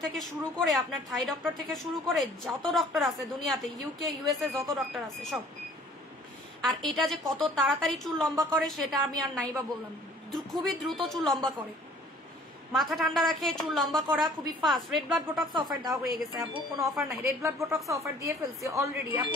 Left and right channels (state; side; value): normal; both; correlation 0.53